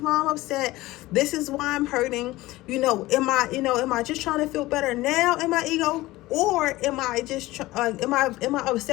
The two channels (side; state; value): right; quieter; 18.4 dB